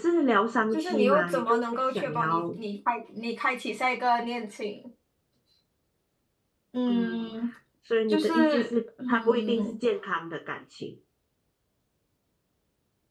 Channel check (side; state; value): both; identical; correlation 1.00